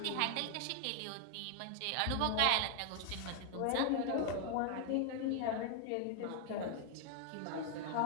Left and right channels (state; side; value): different; both; correlation 0.00